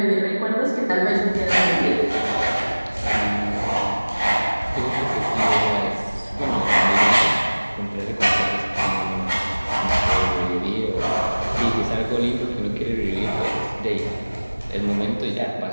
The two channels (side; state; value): both; inverted; correlation -1.00